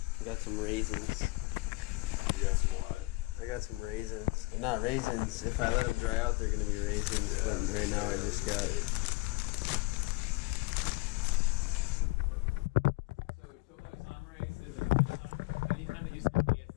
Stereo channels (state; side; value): quieter; right; 22.4 dB